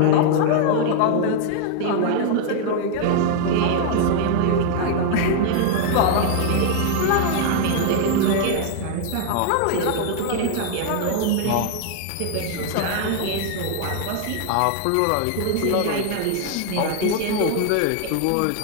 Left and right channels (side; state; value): both; different; correlation 0.00